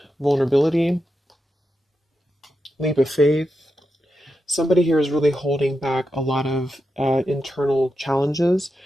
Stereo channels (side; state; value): both; normal; correlation 0.87